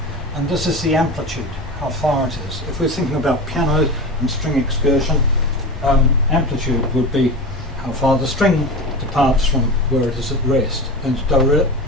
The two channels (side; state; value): both; normal; correlation 0.28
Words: and this is the amplitude, how far it is. If we're thinking about piano and string excursion, amplitude would be how far the string departs from where it is at rest, and